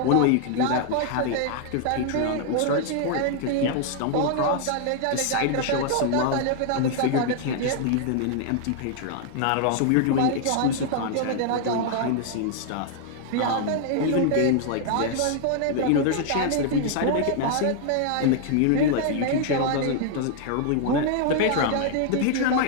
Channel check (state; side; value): different; both; correlation 0.00